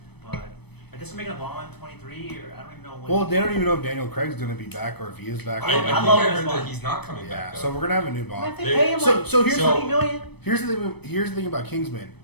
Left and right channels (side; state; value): right; late; 0.98 ms